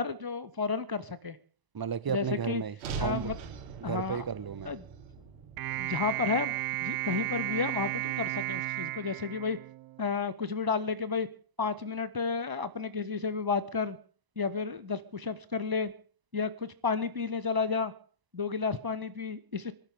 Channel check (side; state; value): left; late; 1.0 ms